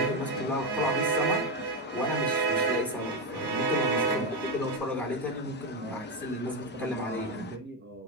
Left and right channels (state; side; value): normal; both; correlation 0.10